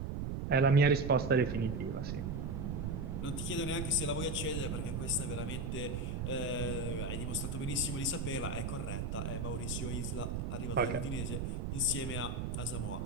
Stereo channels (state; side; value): noise; right; rumble, 2 dB below the sound